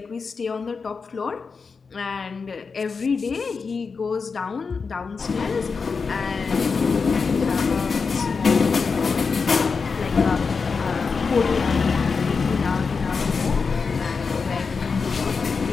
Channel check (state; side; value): quieter; right; 5.0 dB